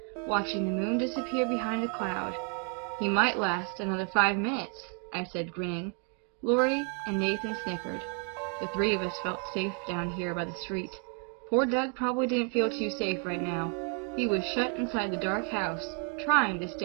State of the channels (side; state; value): left; quieter; 39.3 dB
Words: watching the moon disappear behind a cloud. "He might last another 5 minutes, I said, grinning. Lori and Nathan snickered. The three of us felt safe down here by the street. Poor Doug probably didn't feel too safe right now. He was shut inside the dark house, trying to